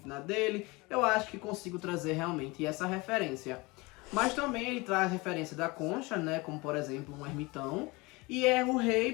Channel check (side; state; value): right; quieter; 24.4 dB